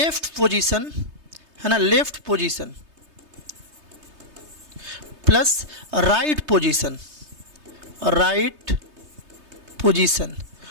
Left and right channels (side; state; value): left; late; 3.3 ms